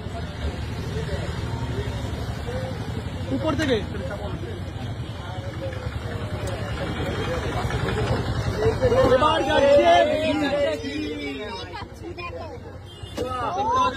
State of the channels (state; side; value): identical; both; correlation 1.00